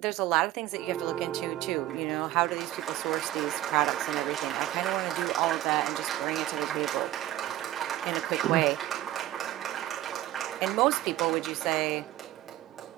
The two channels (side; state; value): left; quieter; 14.4 dB